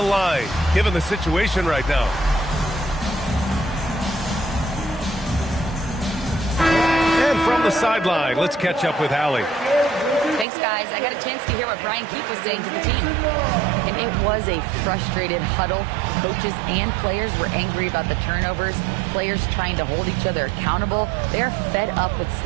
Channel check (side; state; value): left; drops out; at 10.5 s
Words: given the situation right now. And from the sideline, let's catch up with Allie. Thanks, guys. I got a chance to hear what Brian Keefe was saying to the team. And it was a frustrated huddle. Coaches and players were angry about the turnovers. Players trying to hold each other accountable. They're fed up with